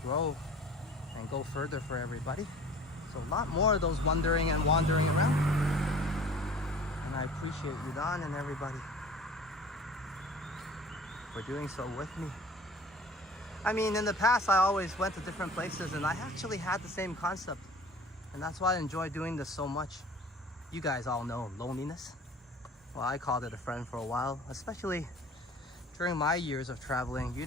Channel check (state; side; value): normal; both; correlation 0.45